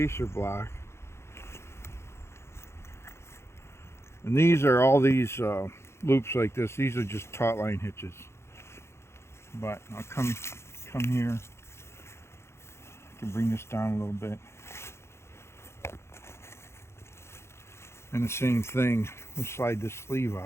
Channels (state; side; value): late; right; 0.13 ms